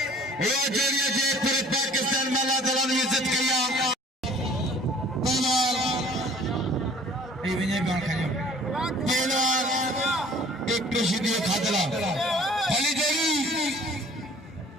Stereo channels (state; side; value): normal; both; correlation 0.52